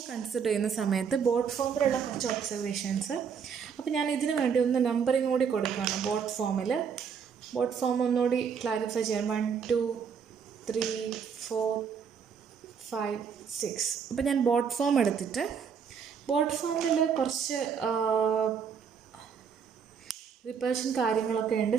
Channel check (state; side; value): quieter; left; 6.7 dB